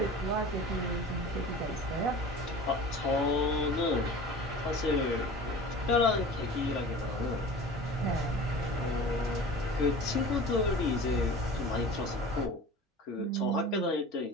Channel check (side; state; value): both; normal; correlation 0.38